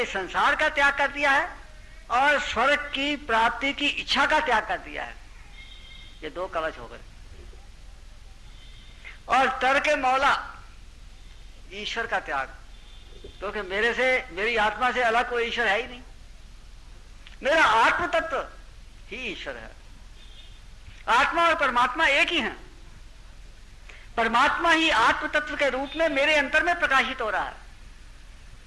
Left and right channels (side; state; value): both; identical; correlation 1.00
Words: संसार का त्याग कर दिया है और स्वर्ग की प्राप्ति की इच्छा का त्याग कर दिया है, ये 2 कवच हो गए। और तर्क मौला, ईश्वर का त्याग, क्योंकि मेरे से, मेरी आत्मा से अलग कोई ईश्वर है ही नहीं, मेरा आत्म तत्व ही ईश्वर है। आत्मा और परमात्मा एक ही हैं। परमात्मा ही आत्म तत्व के रूप में मेरे अंतर में प्रकाशित हो रहा है।